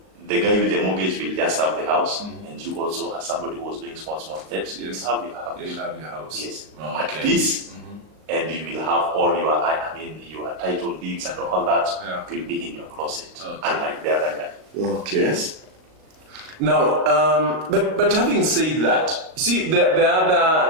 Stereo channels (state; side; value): late; left; 38 ms